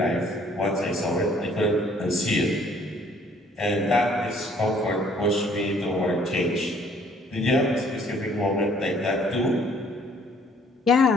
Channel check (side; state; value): both; normal; correlation 0.59